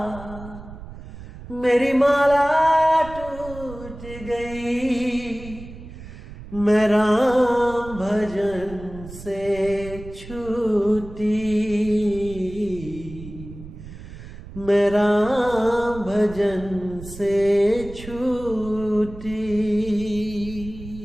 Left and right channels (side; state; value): right; noise; rumble, 14 dB below the sound